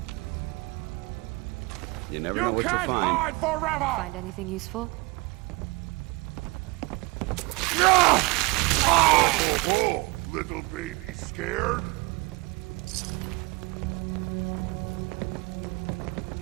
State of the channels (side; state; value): left; quieter; 25.3 dB